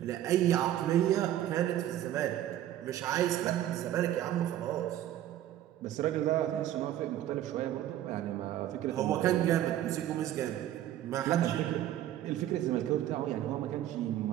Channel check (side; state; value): left; quieter; 12.5 dB